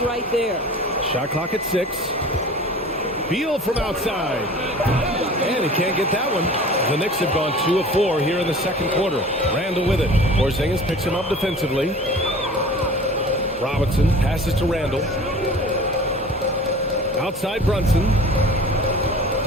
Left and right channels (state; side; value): normal; both; correlation 0.42